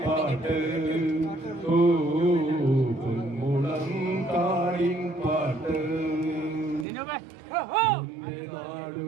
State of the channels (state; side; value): drops out; left; at 6.9 s